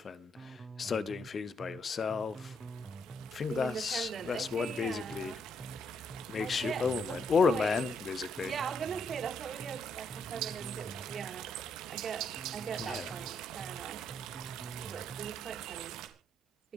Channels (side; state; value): both; normal; correlation 0.75